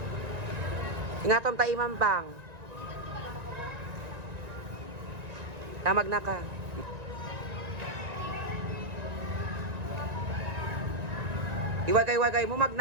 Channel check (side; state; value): left; late; 1.9 ms